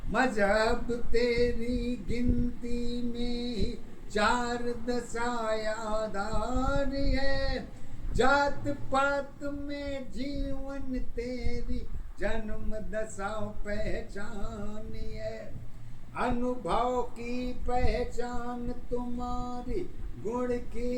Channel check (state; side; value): identical; both; correlation 1.00